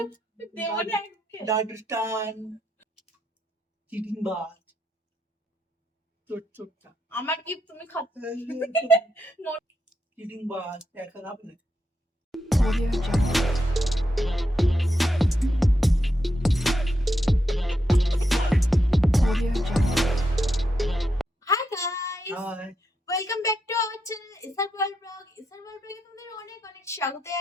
দেব না ডাডস্টান, চিটিং বাজ, চোটটা আমার কি তুমি খাচ্ছো? চিটিং বাজ দেখা হবে না। Hi guys, hi, welcome back to our channel Isar world blog. Isar world ব্লগে তোমাদের অনেক অনেক স্বাগত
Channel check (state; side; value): normal; both; correlation 0.83